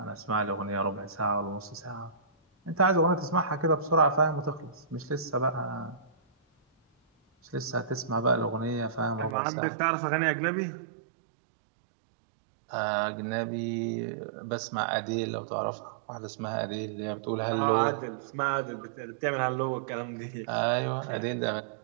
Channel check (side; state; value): left; drops out; at 9.3 s